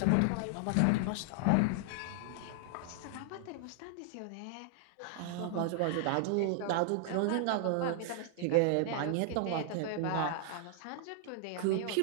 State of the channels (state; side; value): different; both; correlation -0.01